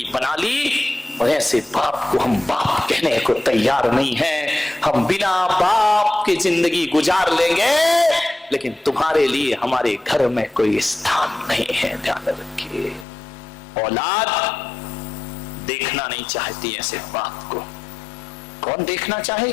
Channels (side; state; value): right; drops out; at 13.1 s